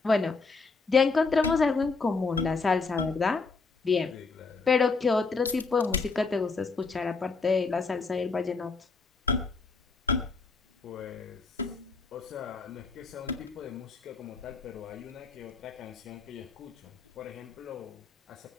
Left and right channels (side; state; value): right; quieter; 4.3 dB